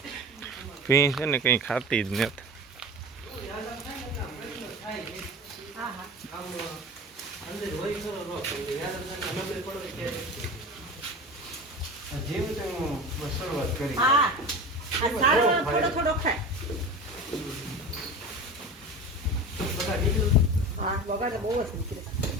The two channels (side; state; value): both; normal; correlation 0.32